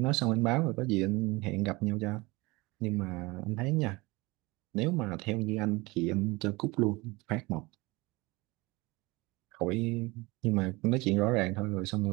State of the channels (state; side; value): quieter; left; 23.4 dB